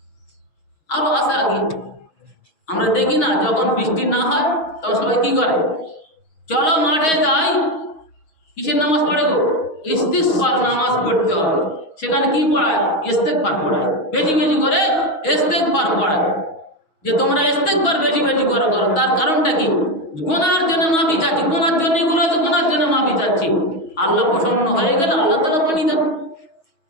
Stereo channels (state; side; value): late; right; 6.3 ms